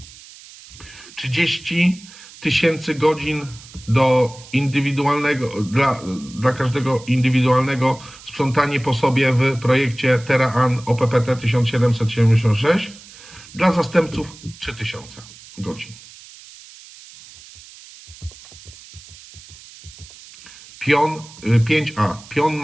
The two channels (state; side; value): noise; right; hiss, 20 dB below the sound